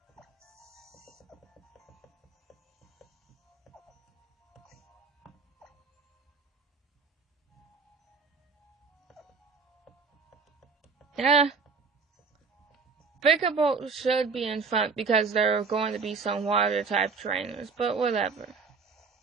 Yeah. Vickerbolt should be in front because there are going to be some water-type trainers, but whatever.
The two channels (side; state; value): left; quieter; 5.0 dB